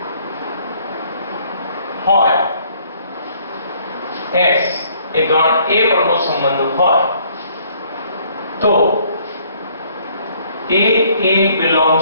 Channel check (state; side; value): inverted; both; correlation -0.62